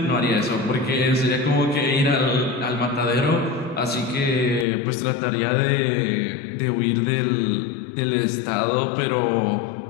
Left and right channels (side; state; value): right; drops out; at 4.7 s